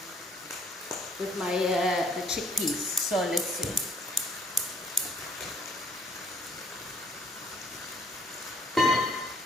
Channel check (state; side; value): normal; both; correlation 0.62